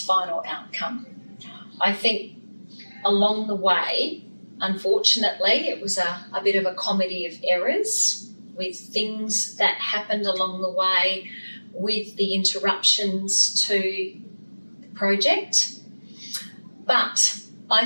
final outcome. I think along the way, unfortunately, it was a bit of a comedy of errors with things that happened along the way with the interruptions to the project. But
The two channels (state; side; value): inverted; both; correlation -1.00